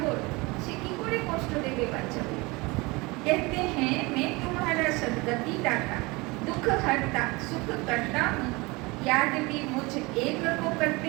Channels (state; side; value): quieter; left; 24.7 dB